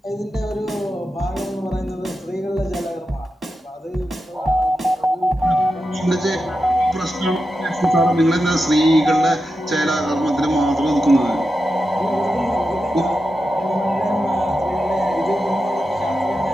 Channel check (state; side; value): normal; both; correlation 0.89